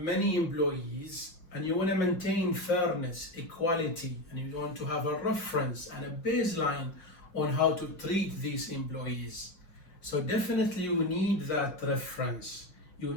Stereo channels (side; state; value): right; late; 5.4 ms